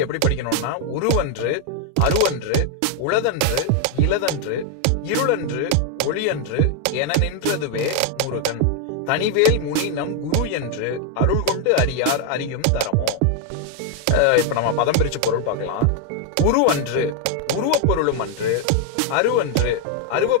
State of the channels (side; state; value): both; different; correlation 0.01